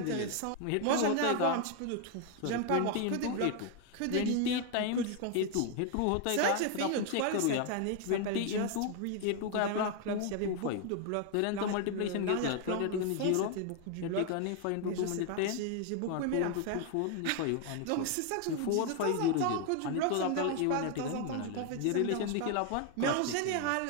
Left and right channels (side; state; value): both; different; correlation 0.01